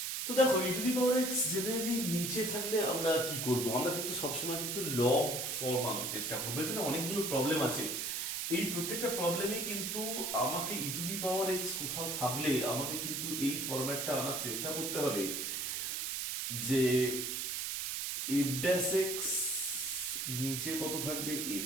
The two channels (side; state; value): right; noise; hiss, 2 dB below the sound